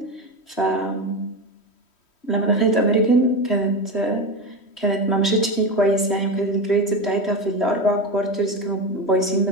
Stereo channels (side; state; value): right; late; 3.1 ms